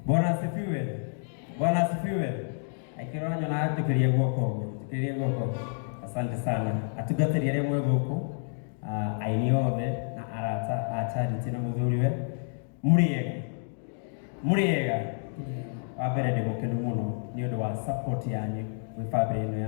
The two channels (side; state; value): right; silent; digital silence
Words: Bwana asifiwe. Bwana asifiwe. Aikĩrora nyona atũkĩrie guoko ũguo. Tũkĩrie guoko. Asante sana. Atungatĩri arĩa mwĩ gũkũ, aini othe na arata a Charity na mũthuriwe. Mũrĩega. Wa mbere ndĩ mũkenu mũno nĩ ũndũ wa support yanyu gwĩ family ĩno